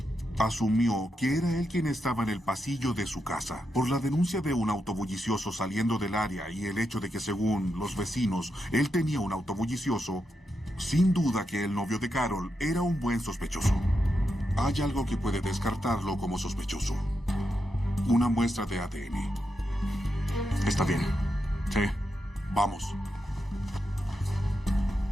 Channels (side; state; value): both; normal; correlation 0.85